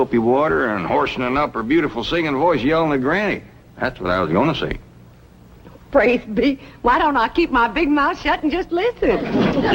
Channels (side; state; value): both; identical; correlation 1.00